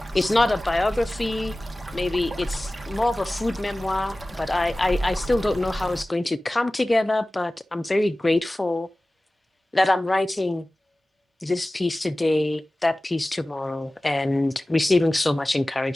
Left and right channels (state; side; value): normal; both; correlation 0.97